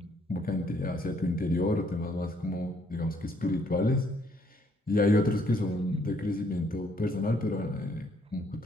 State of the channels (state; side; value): normal; both; correlation 0.67